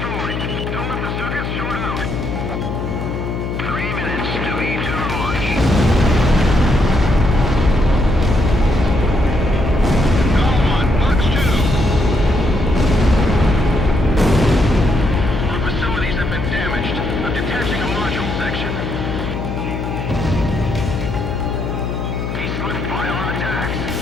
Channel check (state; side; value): noise; left; hum, 4 dB below the sound